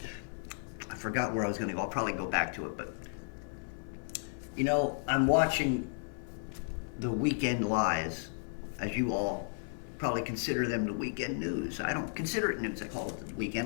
I forgot where I was going to go. I'll probably go back to it, but I'm watching the weekend lies, as you all probably consider them the weekend news. I don't consider it news. I call it the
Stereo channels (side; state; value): right; silent; 55 dB below the other